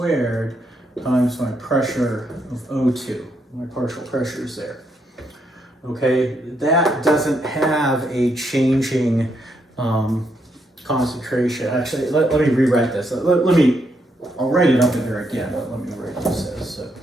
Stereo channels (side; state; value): both; normal; correlation 0.77